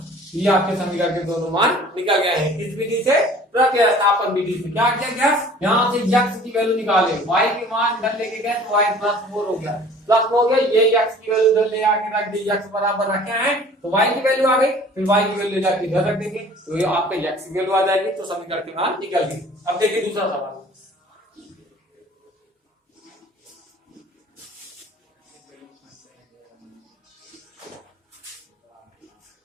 ये आपके समीकरण के दोनों मान निकल गए हैं। किस विधि से, प्रतिस्थापन विधि से। क्या किया गया, यहाँ से x की वैल्यू निकाले, y के मान इधर लेके गए तो y प्लस 4 हो गया, प्लस हो गया, ये x की वैल्यू इधर ले आके रख दी, x बराबर रखे हैं तो y की वैल्यू आ गई, फिर y की वैल्यू जाके इधर रख देंगे तो ये आपका x की वैल्यू आ जाएगी, तो समीकरण के मान निकल गए। अब देखिए दूसरा सवाल,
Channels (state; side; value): normal; both; correlation 0.49